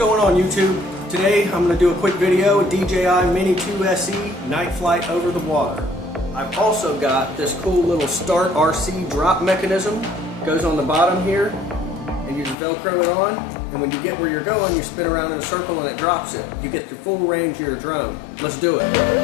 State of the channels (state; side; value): drops out; right; at 12.6 s